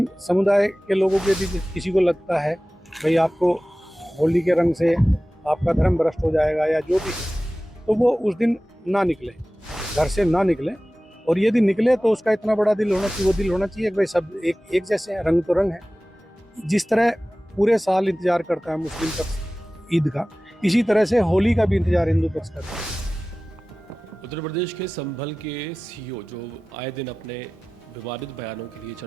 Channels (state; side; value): normal; both; correlation 0.97